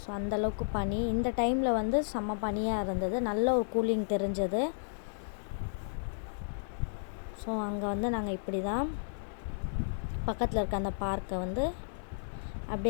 அந்தளவுக்கு பனி. இந்த டைமில் வந்து செம்ம பனியாக இருந்தது. நல்ல ஒரு கூலிங் தெரிஞ்சது. ஸோ அங்கே வந்து நாங்கள் இப்படி தான் பக்கத்தில் இருக்க அந்த பார்க்கை வந்து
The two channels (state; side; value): silent; right; 56 dB below the other